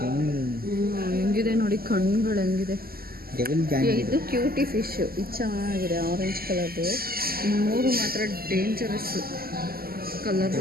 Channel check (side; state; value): left; late; 0.43 ms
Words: ಹೆಂಗಿದೆ ನೋಡಿ ಕಣ್ಣುಗಳು ಹೆಂಗಿದೆ. ಇದು ಕ್ಯೂಟಿ ಫಿಶ್. ಇದು ಚೆನ್ನಾಗಿದೆ ಆರೆಂಜ್ ಕಲರ್ದು. 3 ಮಾತ್ರ ಡೇಂಜರಸ್ಸು ಕಲರು